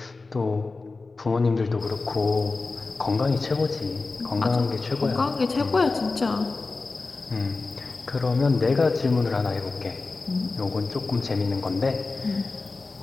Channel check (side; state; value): right; quieter; 3.8 dB